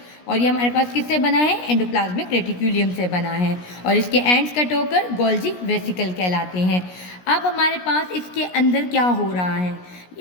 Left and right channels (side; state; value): right; late; 17 ms